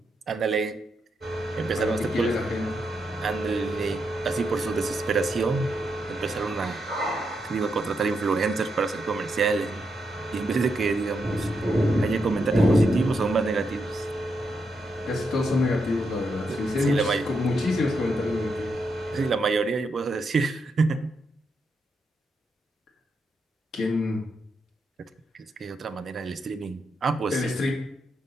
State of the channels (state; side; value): normal; both; correlation 0.82